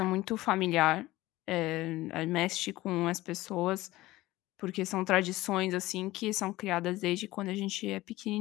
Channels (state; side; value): quieter; right; 17.8 dB